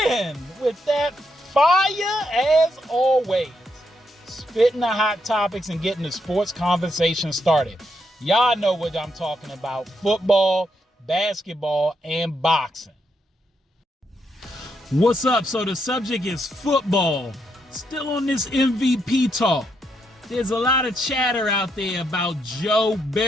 with that fire as always. Spitting the hot topics and getting the sports conversation started. Y'all know what I'm talking about: football, basketball, and boxing. What's up? So the subject is football. Still on this MVP talk. There's a lot of chatter out there about Joe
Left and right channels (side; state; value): both; normal; correlation 0.79